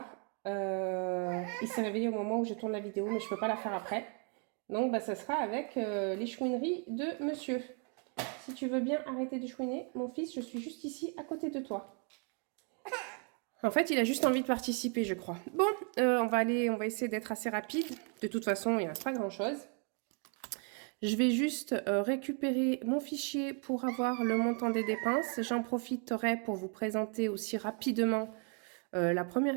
Il s'est réveillé au moment où je tourne la vidéo, mais je ne peux pas la faire après. Donc bah, ça sera avec les chouineries de monsieur. Si tu veux bien arrêter de chouiner, mon fils, je suis juste ici à côté de toi. En fait, il a juste envie de participer, je crois. Bon, on va essayer d'être assez rapide. De toute façon, il ne reste pas grand-chose. Je vais juste récupérer mon fichier pour avoir le montant des dépenses. J'en profiterai pour vous présenter aussi rapidement la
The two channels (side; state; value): left; quieter; 39.3 dB